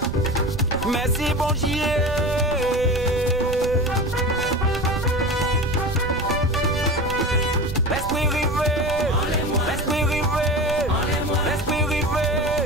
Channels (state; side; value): noise; right; rumble, 8 dB below the sound